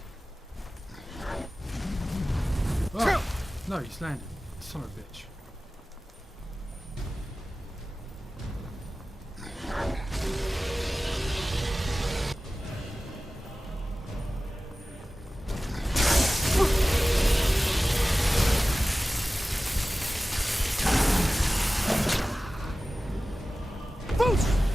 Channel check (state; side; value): normal; both; correlation 0.96